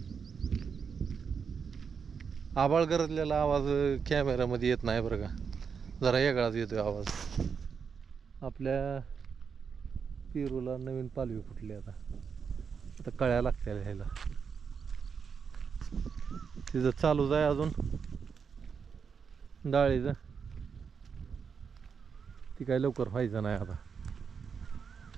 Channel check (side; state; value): left; quieter; 6.2 dB